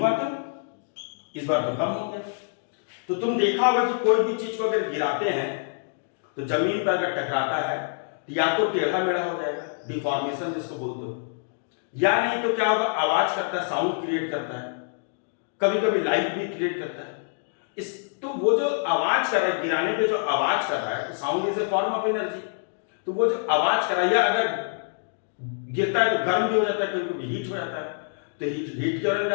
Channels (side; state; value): right; silent; digital silence